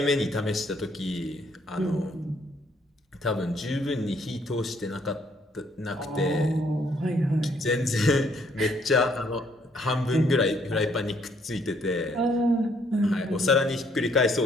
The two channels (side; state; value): both; normal; correlation 0.67